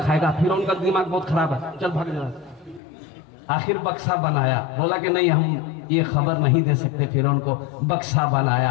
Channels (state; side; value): drops out; right; at 2.8 s